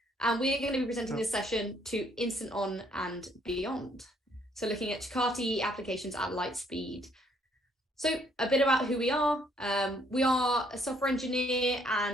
and we are going to be presenting this session to InstantOn and beyond. So looking at Jakarta EE applications at Lightspeed. So a bit about who we are. We are a software engineer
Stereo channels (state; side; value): normal; both; correlation 0.67